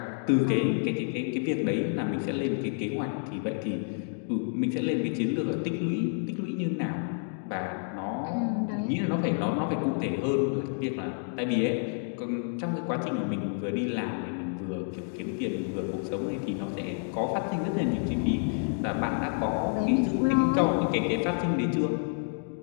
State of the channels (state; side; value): silent; right; 58 dB below the other